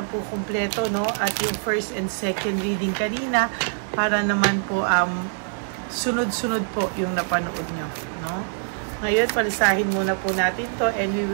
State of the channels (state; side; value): silent; left; digital silence